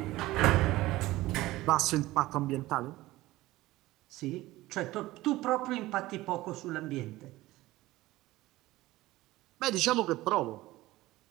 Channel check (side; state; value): left; quieter; 17.8 dB